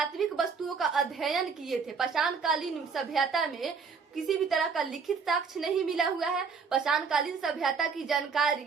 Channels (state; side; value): quieter; left; 5.5 dB